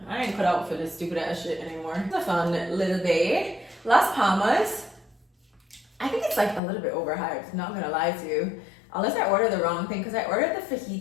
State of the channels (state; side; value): drops out; right; at 6.6 s